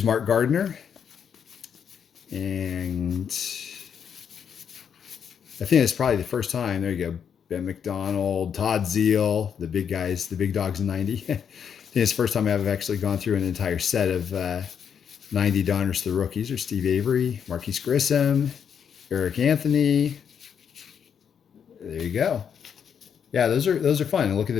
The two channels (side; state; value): right; quieter; 7.7 dB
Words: Mark Gardner. And I think it's probably the first time. There you go. Ben McDonald, Todd Zeal, the big guys, the big dogs in 90. I think it's the first time I've actually gone through an entire set of 90 Donruss, the rookies. Or Steve Avery, Marquise Grissom, Eric Anthony. There you go. Yeah, those are fun. And look at the